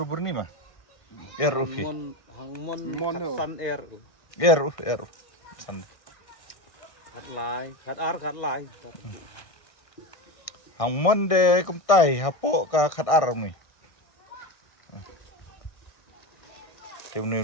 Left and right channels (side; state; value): right; late; 1.6 ms